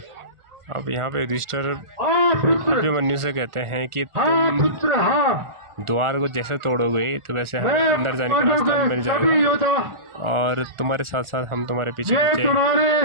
अब यहाँ पे युधिष्ठिर पुत्र, अभिमन्यु से कहते हैं कि हाँ तुम पुत्र, हाँ, द्वार को जैसे तोड़ोगे तो वैसे हमें मैं अंदर जाने का रास्ता मिल सभी जाएगा योद्धा और तुम्हारे साथ साथ हम तुम्हारे पीछे ये पीछे तुम्हारे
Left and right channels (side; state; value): left; late; 1.4 ms